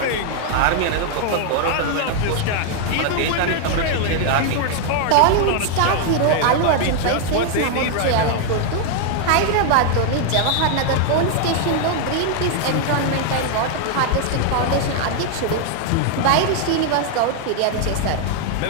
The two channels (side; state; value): both; different; correlation 0.00